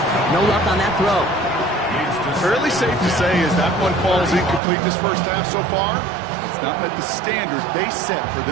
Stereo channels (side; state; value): left; drops out; at 4.6 s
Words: no luck on that throw. Fairly safe to say as that one falls incomplete this 1st half so far, it's not met the standard they set for